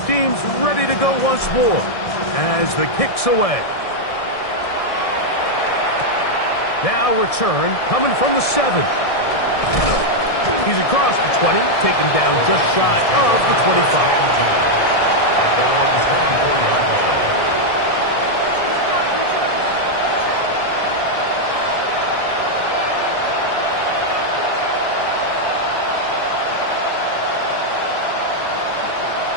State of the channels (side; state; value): right; late; 1.6 ms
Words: teams ready to go once more as the kick's away. Now return coming from the 7. He's across the 20, taken down just shy of the 25. At their own 24-yard line.